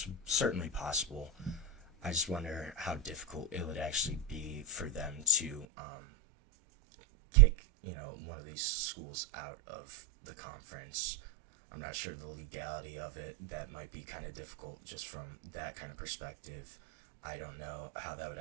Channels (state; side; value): drops out; left; at 5.7 s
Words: certainly possible. I just wonder how difficult it would actually be for them to kick, one of these schools out of the conference. I'm not sure the legality of it. That might be kind of difficult just from that kind of perspective. I don't know how that would